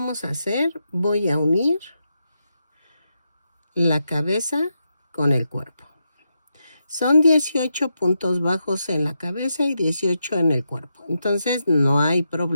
a hacer? Voy a unir la cabeza con el cuerpo. Son 18 puntos bajos en la cabeza y 18 en el cuerpo. Entonces, no hay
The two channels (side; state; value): both; inverted; correlation -0.85